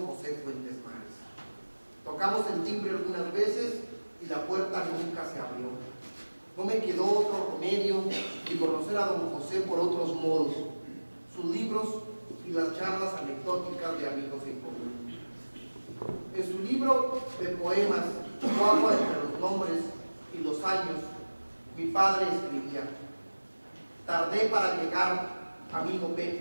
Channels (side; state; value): both; inverted; correlation -1.00